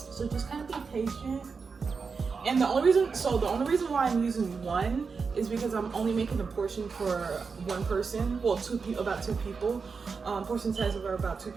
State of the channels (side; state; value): left; quieter; 5.1 dB